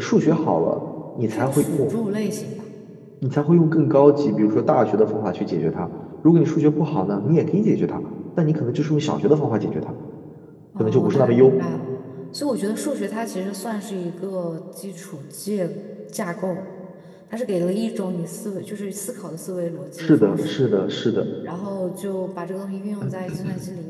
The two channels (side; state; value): both; identical; correlation 1.00